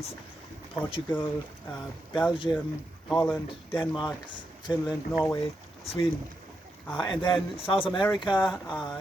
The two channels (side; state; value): both; normal; correlation 0.84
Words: Portugal, Belgium, Holland, Denmark, Finland, Norway, Sweden. And then South America,